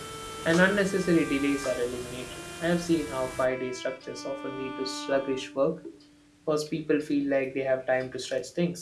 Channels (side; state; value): both; identical; correlation 1.00